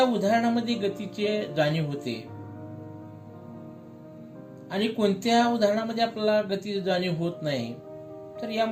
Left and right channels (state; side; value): identical; both; correlation 1.00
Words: उदाहरणामध्ये गतीचे जाणीव होते आणि कोणत्या उदाहरणामध्ये आपल्याला गतीची जाणीव होत नाही. तर